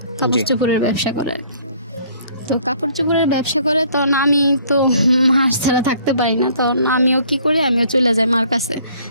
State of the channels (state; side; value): inverted; both; correlation -0.59